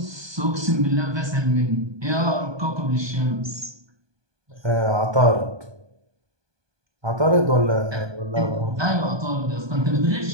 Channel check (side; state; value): left; late; 1.2 ms